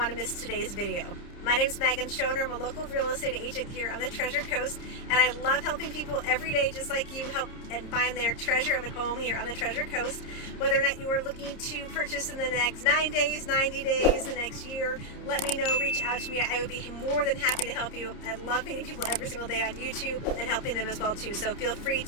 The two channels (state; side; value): late; right; 30 ms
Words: to miss today's video. My name is Megan Schoner. I'm a local real estate agent here on the Treasure Coast, and I love helping people every day, just like you, help and find their treasure of a home here on the Treasure Coast. Whether or not you are looking to purchase in the next 9 days, 90 days, the next year, let me know, reach out to me. I would be more than happy to help you. I love meeting people every single day on YouTube and helping them as well too. So feel free